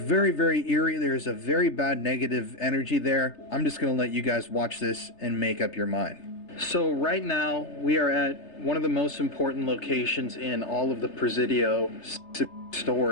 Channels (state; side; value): late; right; 3.3 ms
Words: very eerie. There's a very bad negative energy there. I'm just going to let you guys watch this and make up your mind. So right now we are at one of the most important locations in all of the Presidio